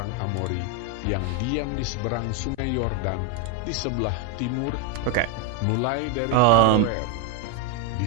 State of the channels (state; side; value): different; both; correlation 0.01